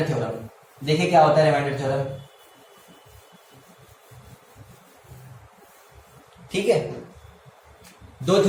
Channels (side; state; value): both; identical; correlation 1.00